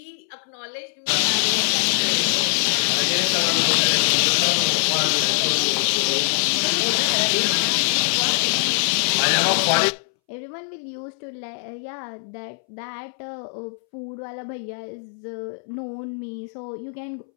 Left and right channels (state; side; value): silent; right; 63 dB below the other